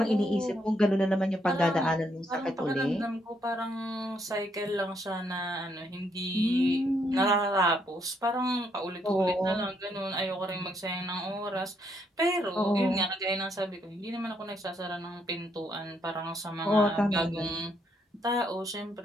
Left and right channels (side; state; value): both; normal; correlation 0.73